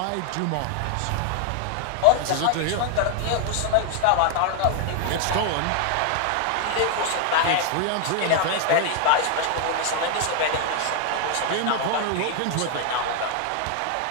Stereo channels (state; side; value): different; both; correlation 0.01